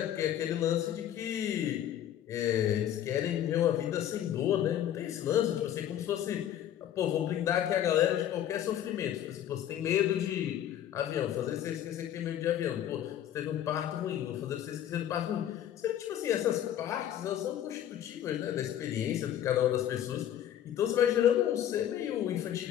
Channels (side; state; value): right; quieter; 10.9 dB